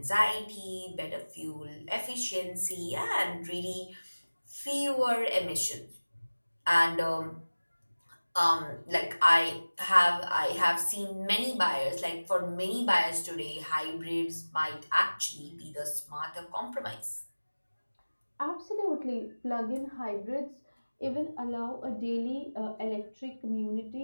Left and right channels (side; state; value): both; inverted; correlation -1.00